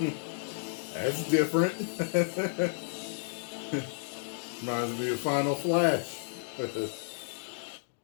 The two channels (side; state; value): right; silent; digital silence